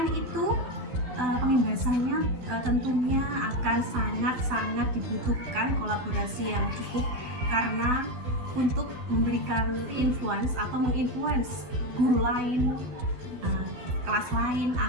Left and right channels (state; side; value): late; left; 12 ms